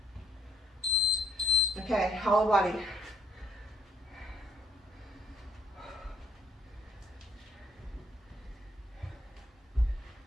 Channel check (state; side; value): normal; both; correlation 0.67